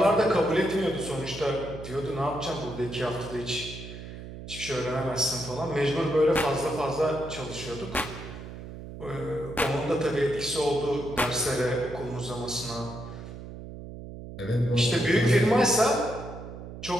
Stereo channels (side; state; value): right; noise; hum, 12 dB below the sound